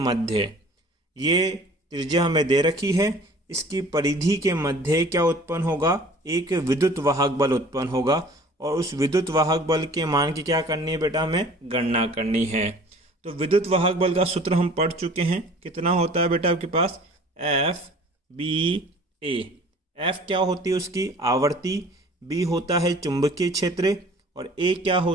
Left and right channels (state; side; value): normal; both; correlation 0.48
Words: ये त्रिज्या हमें दे रखी है, इसकी परिधि के मध्य क्या उत्पन्न होगा, एक विद्युत वाहक बल उत्पन्न होगा। और उस विद्युत वाहक बल के मान की क्या करनी है बेटा, हमें गणना करनी है। तो विद्युत वाहक बल का सूत्र हम पढ़ चुके हैं, कितना होता है बेटा आपके पास एफ बी ए। एफ क्या होती है उसकी आवर्ती, बी होता है चुंबकीय क्षेत्र, और ए क्या